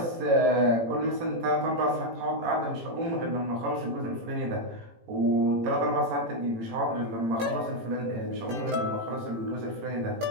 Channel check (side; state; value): left; late; 18 ms